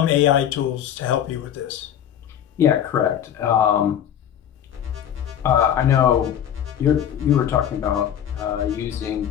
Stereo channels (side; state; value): right; quieter; 9.8 dB